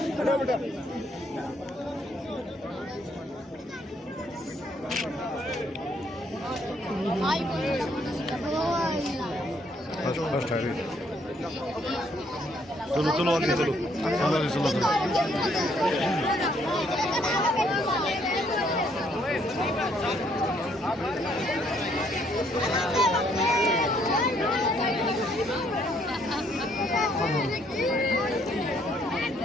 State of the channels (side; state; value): both; normal; correlation 0.68